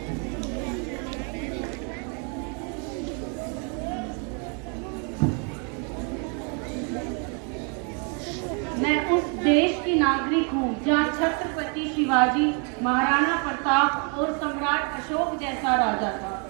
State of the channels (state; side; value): quieter; left; 37.7 dB